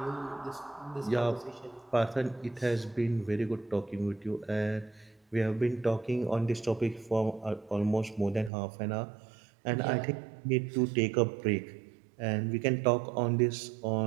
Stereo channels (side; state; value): left; drops out; at 8.5 s